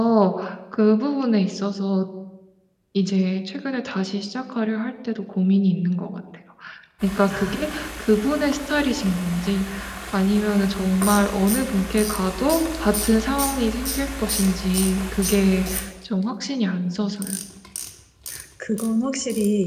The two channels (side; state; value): both; identical; correlation 1.00